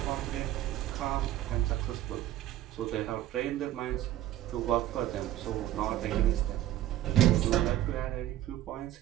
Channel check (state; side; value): quieter; left; 13.4 dB